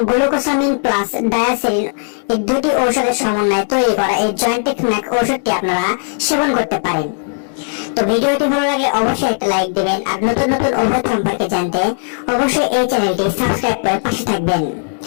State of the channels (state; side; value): silent; right; digital silence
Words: গ্লুকোসামিন প্লাস ডায়াসেরিন এই দুটি ঔষধের সমন্বয়ে তৈরি করা এই জয়েন্টেক ম্যাক্স ওষুধটি আপনারা সেবন করতে পারেন। তো ভিডিওটি ভালো লাগলে অবশ্যই একটা লাইক দিবেন আর নতুন নতুন ওষুধ সম্পর্কে জানতে অবশ্যই এই চ্যানেলটি সাবস্ক্রাইব করে পাশে থাকবেন।